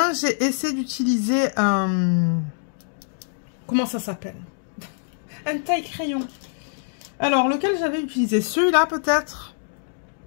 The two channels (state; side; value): silent; right; digital silence